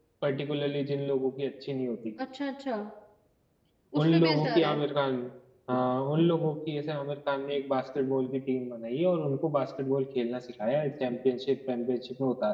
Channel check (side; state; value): both; identical; correlation 1.00